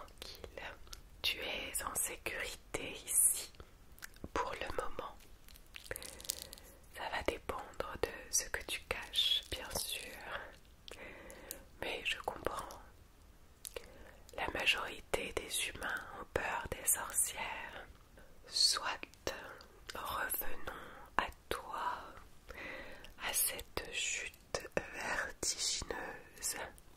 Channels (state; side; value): identical; both; correlation 1.00